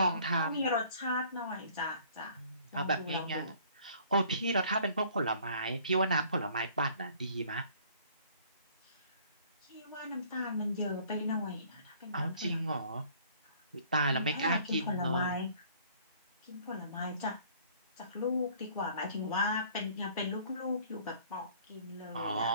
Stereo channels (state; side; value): inverted; both; correlation -0.56